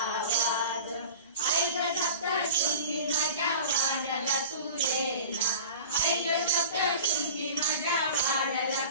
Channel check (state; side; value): inverted; both; correlation -0.37